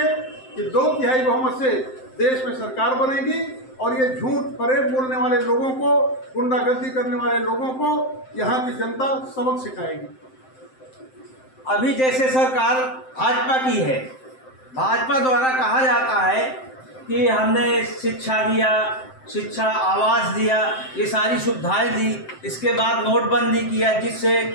कि 2/3 बहुमत से देश में सरकार बनेगी और ये झूठ फरेब बोलने वाले लोगों को, गुंडागर्दी करने वाले लोगों को यहाँ की जनता सबक सिखाएगी। अभी जैसे सरकार भाजपा की है, भाजपा द्वारा कहा जाता है कि हमने शिक्षा दिया, शिक्षा आवास दिया, ये सारी सुविधाएं दी, इसके बाद नोटबंदी किया, जिससे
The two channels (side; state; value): right; late; 7.7 ms